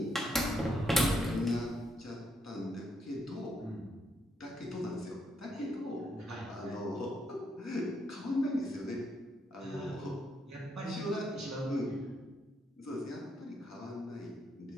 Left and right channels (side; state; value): both; normal; correlation 0.76